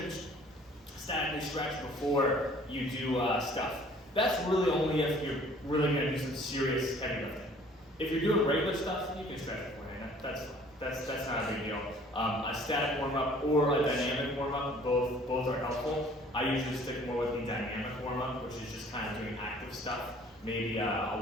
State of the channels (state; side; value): normal; both; correlation 0.54